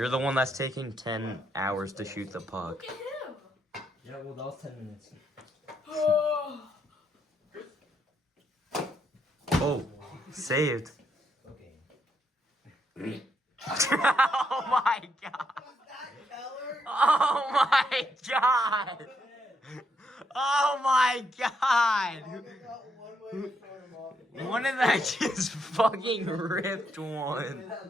the one that's taking 10 hours to shoot the puck. Look at him. Yeah, well, that was 10 minutes. Oh. Oh, saved. Okay. Oh my god. Keller? Oh my god. Oh my god. I got one way to throw him off. One of that just fucking ripped one.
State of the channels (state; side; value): normal; both; correlation 0.76